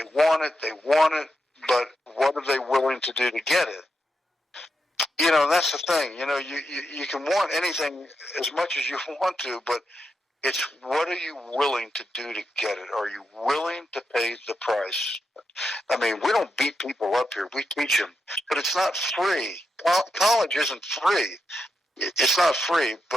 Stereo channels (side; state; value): both; normal; correlation 0.86